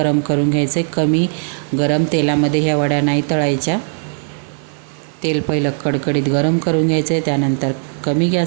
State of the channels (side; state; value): left; silent; digital silence